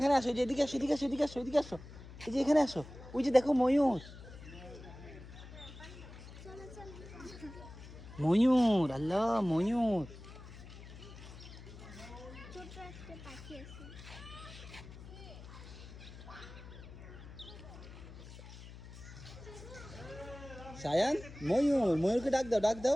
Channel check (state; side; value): noise; left; hum, 15 dB below the sound